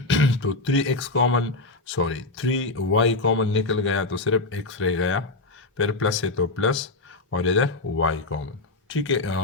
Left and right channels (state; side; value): quieter; right; 3.2 dB